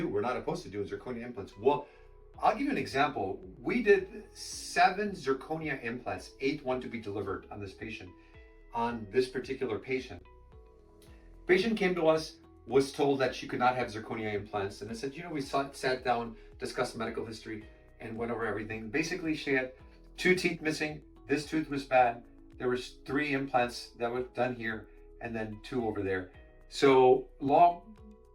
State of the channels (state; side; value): identical; both; correlation 1.00